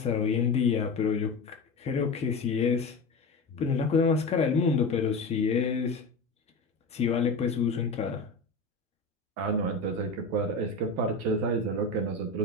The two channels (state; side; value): quieter; right; 3.5 dB